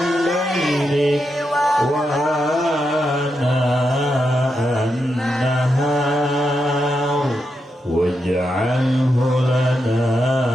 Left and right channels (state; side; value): normal; both; correlation 0.85